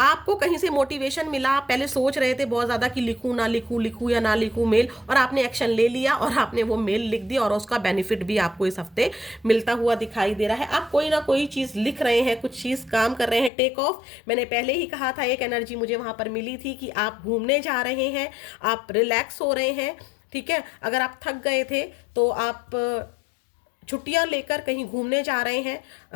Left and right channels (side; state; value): right; drops out; at 13.5 s